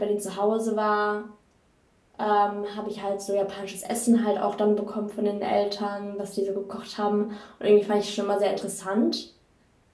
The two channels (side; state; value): both; identical; correlation 1.00